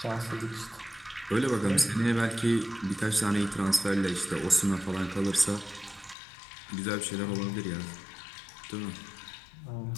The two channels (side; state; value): right; drops out; at 6.2 s